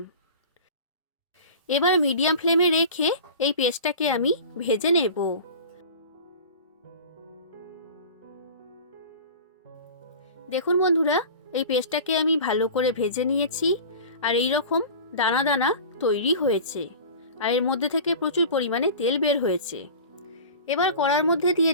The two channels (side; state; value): both; inverted; correlation -0.37